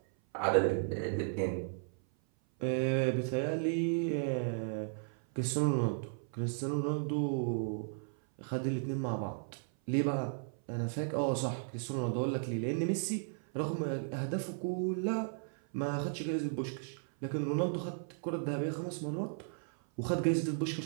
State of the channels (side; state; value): left; silent; 54 dB below the other